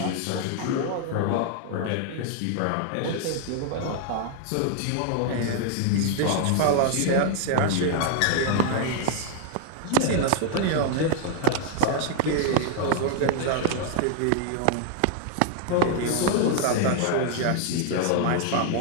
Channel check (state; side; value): different; both; correlation 0.00